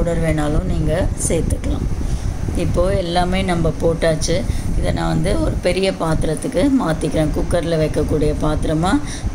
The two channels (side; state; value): both; identical; correlation 1.00